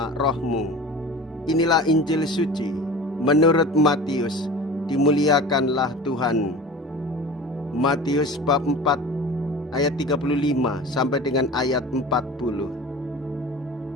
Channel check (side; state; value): both; normal; correlation 0.37